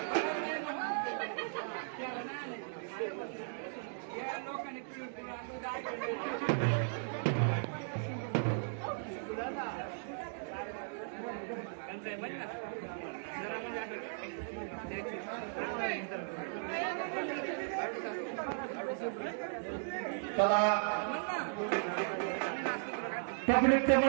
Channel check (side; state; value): left; silent; digital silence